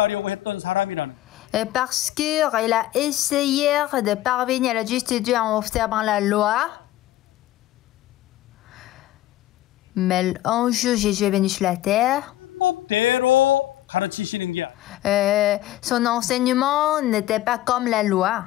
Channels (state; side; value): quieter; right; 14.9 dB